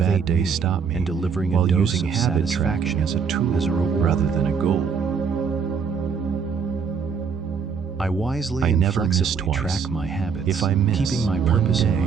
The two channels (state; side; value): quieter; left; 6.1 dB